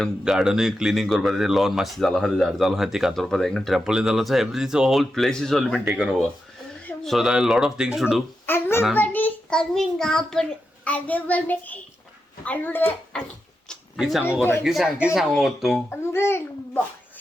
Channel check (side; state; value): both; normal; correlation 0.88